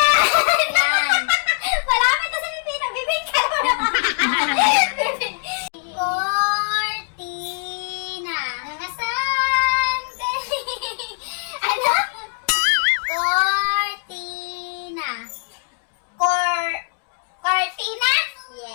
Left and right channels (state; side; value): silent; right; digital silence